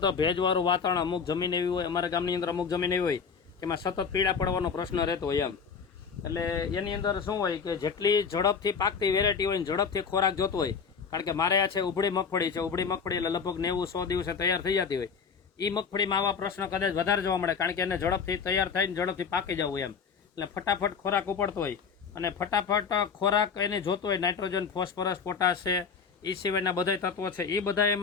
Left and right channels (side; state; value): right; quieter; 6.0 dB